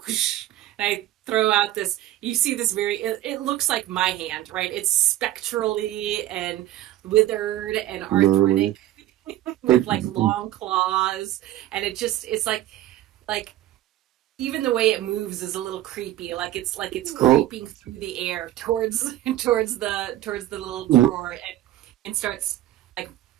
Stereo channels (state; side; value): quieter; left; 14.1 dB